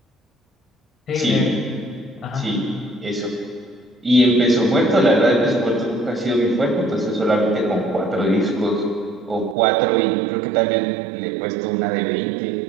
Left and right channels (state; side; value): drops out; left; at 9.6 s